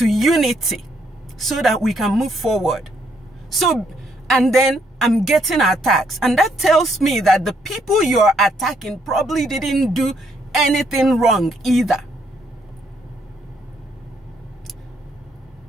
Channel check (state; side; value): normal; both; correlation 0.72